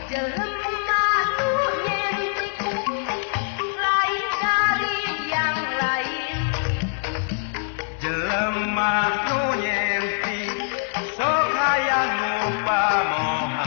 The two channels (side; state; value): right; silent; 60 dB below the other